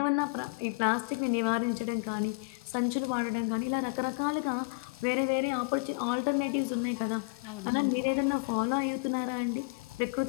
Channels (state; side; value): quieter; right; 33.2 dB